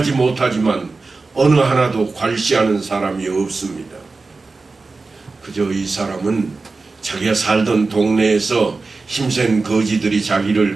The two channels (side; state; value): left; quieter; 3.9 dB